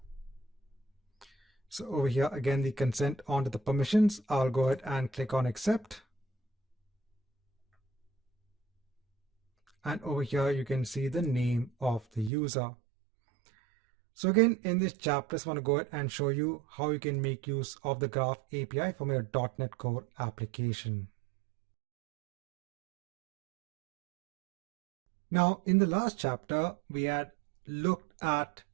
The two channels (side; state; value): left; drops out; at 12.3 s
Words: So over here, again, the consent onto the permissions. I'll go ahead and click on accept. And over here, you can see the name of the user. So again, in this chapter, I just want to go ahead and show you how you can make use of the Graph API from your .NET Core application. Now, in the last chapter, we had looked at